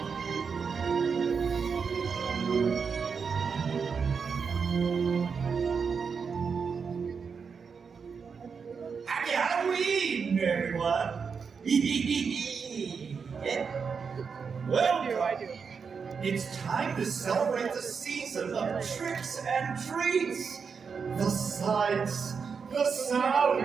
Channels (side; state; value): left; quieter; 5.8 dB